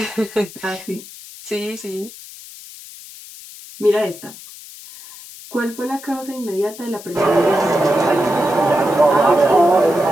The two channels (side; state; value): left; noise; hiss, 17 dB below the sound